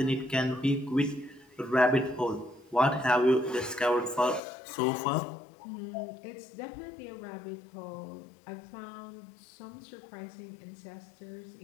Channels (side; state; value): right; drops out; at 4.4 s